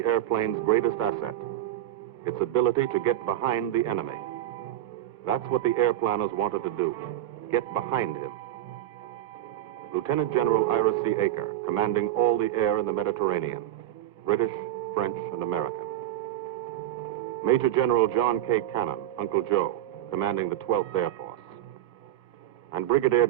airplane's greatest asset, its ability to get behind the enemy. That's what the airplanners wanted to do, get behind him. Lieutenant General Ira C. Aker, commanding all the air in the Mediterranean, British, French, and American. Major General John K. Cannon, Uncle Joe, commanding the 12th Air Force. And Brigadier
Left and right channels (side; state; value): left; quieter; 13.2 dB